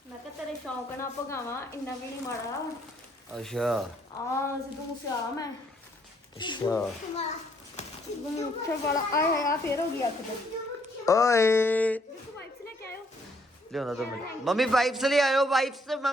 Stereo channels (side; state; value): both; normal; correlation 0.68